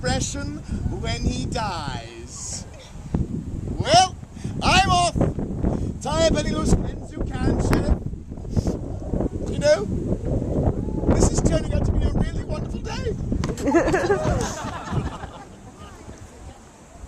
when he dies. Well, I'm off. Tie up any loose ends you can, Sheriff. You know, this is turning out to be a really wonderful day.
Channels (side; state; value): both; identical; correlation 1.00